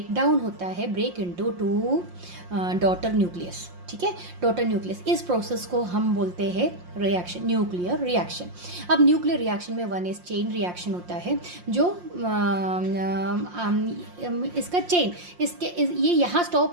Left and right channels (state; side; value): late; left; 5.6 ms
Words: डाउन होता है, break into two daughter nucleus, ठीक है, डॉटर न्यूक्लियस। इस प्रोसेस को हम बोलते हैं रिएक्शन, न्यूक्लियर रिएक्शन। अब न्यूक्लियर रिएक्शन में वन इज चेन रिएक्शन होता है, जो इसका चेन ये यहाँ